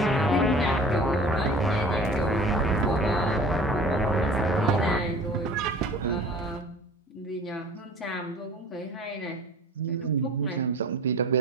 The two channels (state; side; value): normal; both; correlation 0.44